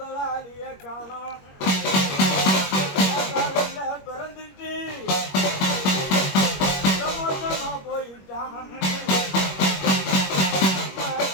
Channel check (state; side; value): late; right; 21 ms